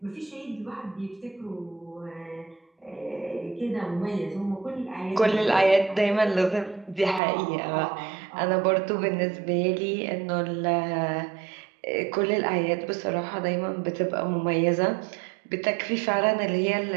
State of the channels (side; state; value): left; drops out; at 7.2 s